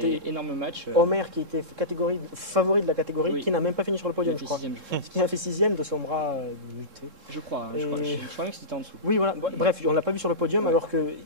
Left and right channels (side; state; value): left; late; 3.7 ms